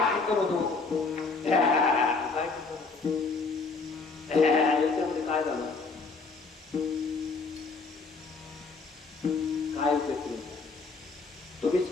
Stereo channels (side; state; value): right; quieter; 4.2 dB